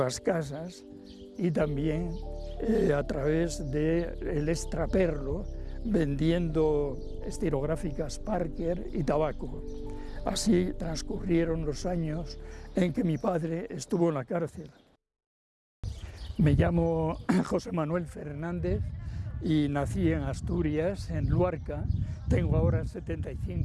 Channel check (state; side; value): identical; both; correlation 1.00